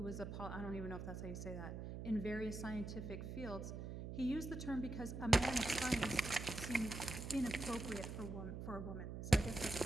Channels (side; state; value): right; noise; hum, 6 dB below the sound